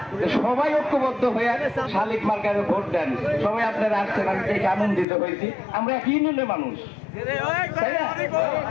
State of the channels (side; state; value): right; drops out; at 5.1 s